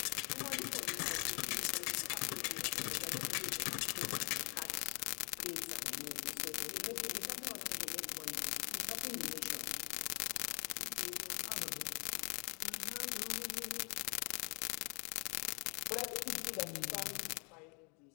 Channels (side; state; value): right; quieter; 33.0 dB